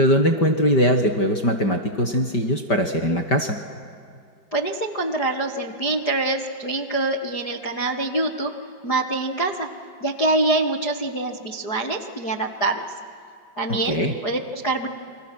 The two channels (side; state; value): right; late; 5.1 ms